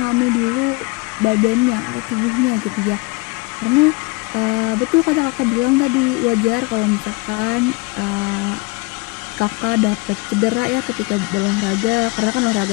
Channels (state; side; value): quieter; right; 26.2 dB